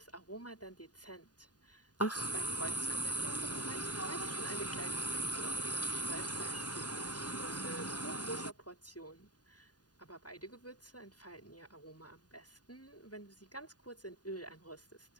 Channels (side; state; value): right; late; 0.69 ms